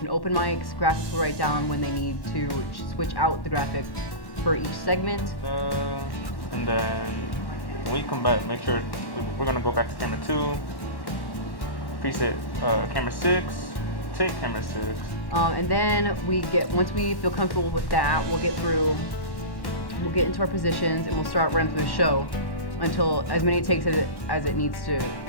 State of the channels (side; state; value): right; late; 1.1 ms